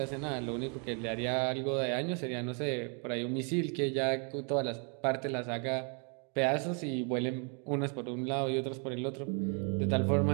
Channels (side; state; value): left; quieter; 38.7 dB